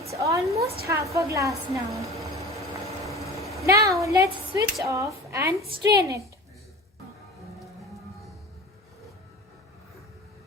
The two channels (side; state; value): both; normal; correlation 0.37